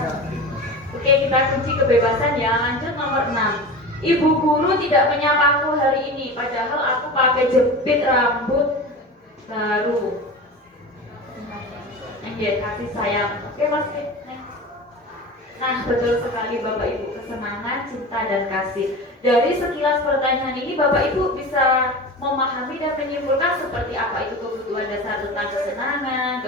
Oke, kita kunci kebebasan ya. Lanjut nomor 6. Ibu guru tidak menyapaku hari ini, padahal aku pakai jepit rambut baru. Kasih sayang. Oke, masih. Nah, betul sekali Bapak Ibu, kesenangan, cinta, dan kasih. Dari sekilas pertanyaan ini Bapak Ibu bisa memahami dan menyimpulkan seperti apa itu kebutuhan dasar tentang kesenangan,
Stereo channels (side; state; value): both; normal; correlation 0.31